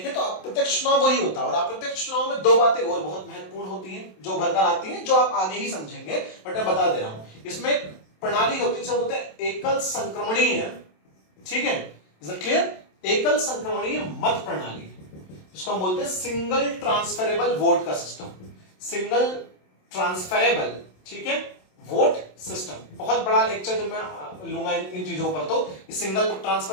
तो अप्रत्यक्ष चुनाव वही होता है, और अप्रत्यक्ष चुनाव में दो बातें और बहुत महत्वपूर्ण होती हैं जो भरकर आती हैं, जो आप आगे ही समझेंगे, बट मैं बता दे रहा हूं। इसमें प्रणाली होती है, बोलते हैं एकल संक्रमणीय, ठीक है, इज इट क्लियर? एकल संक्रमणीय मत प्रणाली, इसको हम बोलते हैं सिंगल ट्रांसफरेबल वोट का सिस्टम, सिंगल ट्रांसफरेबल, ठीक है, वोट सिस्टम। बहुत बड़ा लेक्चर जब मैं लूंगा इन चीजों पर, तो सिंगल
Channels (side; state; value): right; late; 27 ms